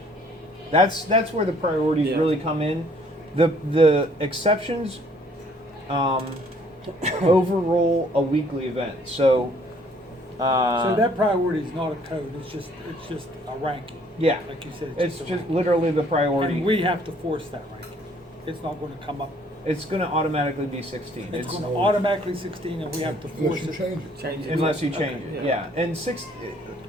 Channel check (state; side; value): normal; both; correlation 0.61